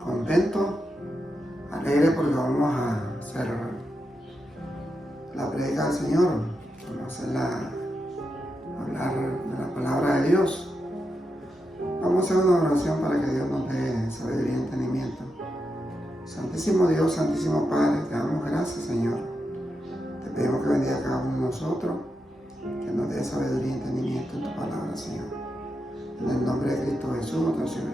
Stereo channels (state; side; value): normal; both; correlation 0.86